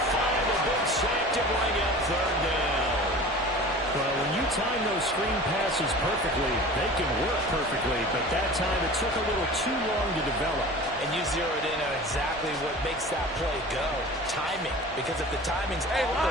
5. A big sack to bring up third down. Well, when you time those screen passes perfectly, they can work perfectly. But that time, it took a little too long to develop. And you zeroed in on exactly what makes that play go. Timing. Because if the timing's off,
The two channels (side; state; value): both; normal; correlation 0.39